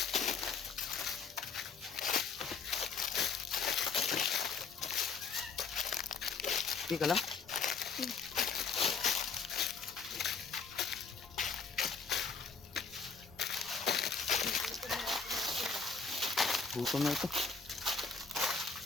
Sige ka lang. Gutom na ito.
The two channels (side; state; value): right; quieter; 5.2 dB